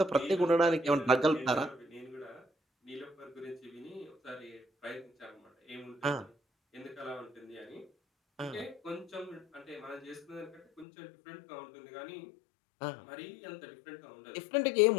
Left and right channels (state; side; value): drops out; right; at 10.9 s